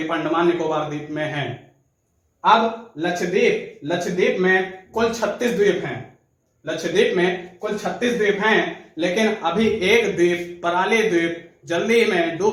अंडमान निकोबार द्वीप में हैं। अब लक्षद्वीप में कुल 36 द्वीप हैं, लक्षद्वीप में कुल 36 द्वीप हैं, लेकिन अभी एक द्वीप पराली द्वीप जल्दी में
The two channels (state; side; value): identical; both; correlation 1.00